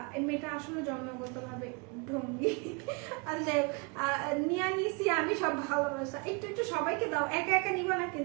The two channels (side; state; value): left; quieter; 31.3 dB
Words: মেয়েটা আসলে জন্মগতভাবে ঢঙ্গি। আর যাই নিয়ে নিছি আমি সব ভালোবাসা, একটু একটু সবাইকে দাও, একা একা নিবা না